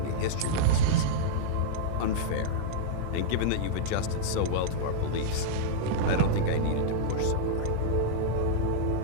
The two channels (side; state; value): both; different; correlation -0.02